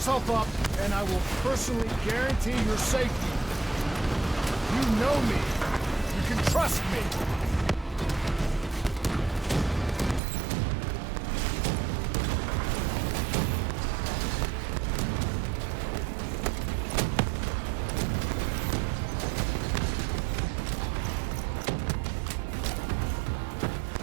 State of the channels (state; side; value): drops out; left; at 10.2 s